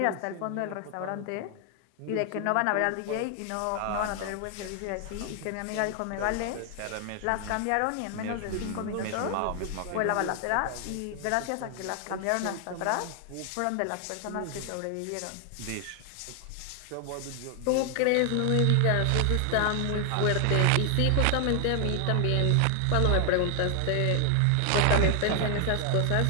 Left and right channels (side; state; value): both; different; correlation 0.00